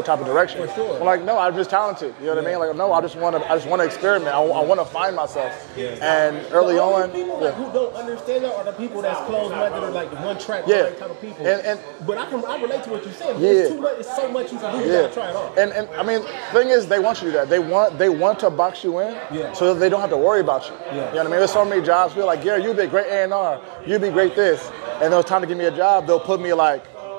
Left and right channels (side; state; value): left; silent; digital silence